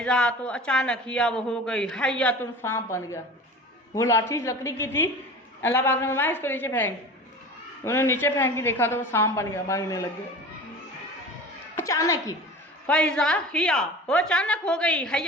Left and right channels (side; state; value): both; normal; correlation 0.37